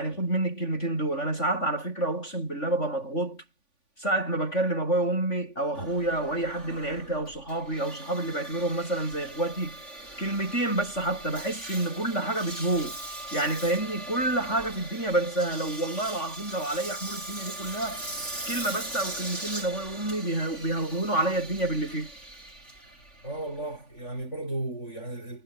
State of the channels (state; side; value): late; right; 3.5 ms